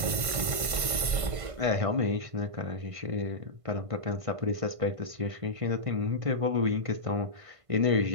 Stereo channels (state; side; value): late; left; 1.5 ms